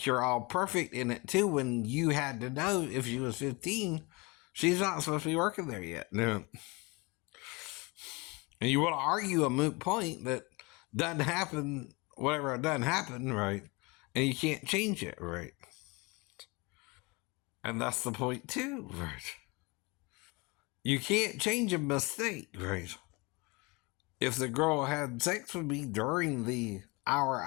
you're all perfect in it, too, when you had to know if she was 15, she's not supposed to be working there yet. No. And you want to argue a moot point that doesn't happen, whatever it doesn't happen, right? And you can't change it, right? And that's the point too, right? You can't change a mistake, right? If the girl had sex with me during the hour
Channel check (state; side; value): quieter; right; 26.7 dB